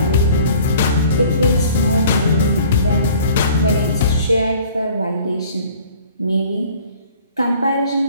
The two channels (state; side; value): inverted; both; correlation -0.50